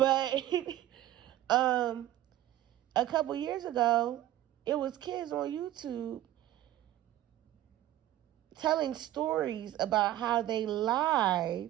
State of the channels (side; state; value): left; quieter; 13.8 dB